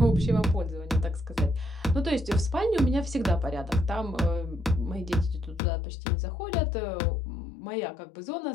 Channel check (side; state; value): right; drops out; at 5.6 s